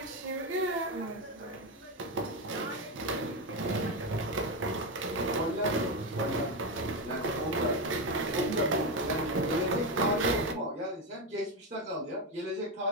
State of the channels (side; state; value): both; normal; correlation 0.12